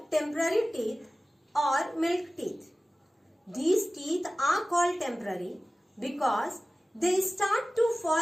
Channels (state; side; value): normal; both; correlation 0.97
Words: temporary teeth or milk teeth. These teeth are called temporary because they start to